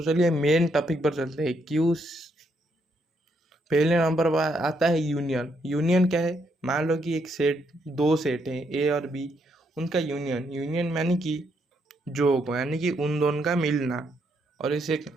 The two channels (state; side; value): normal; both; correlation 0.75